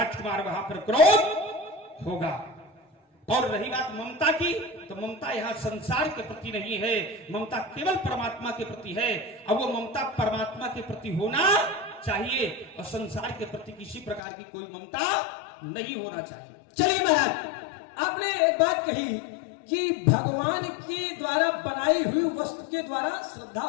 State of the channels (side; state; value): right; drops out; at 14.2 s